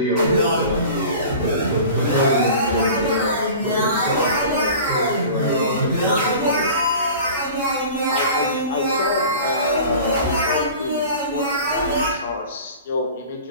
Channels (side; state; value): both; inverted; correlation -0.39